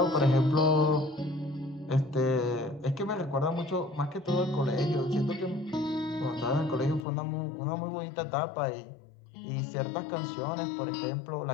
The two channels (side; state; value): right; drops out; at 7.1 s